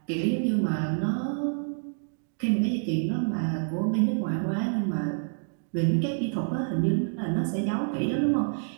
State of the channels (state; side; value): silent; left; digital silence